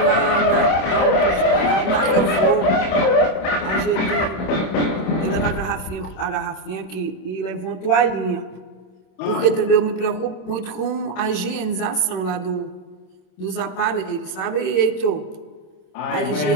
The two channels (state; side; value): late; right; 26 ms